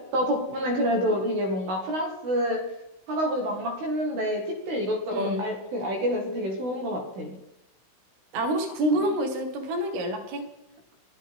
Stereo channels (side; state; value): left; late; 16 ms